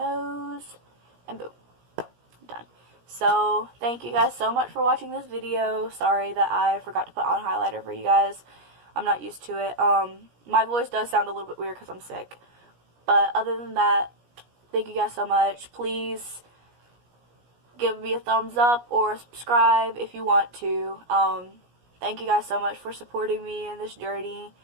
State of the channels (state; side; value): late; left; 17 ms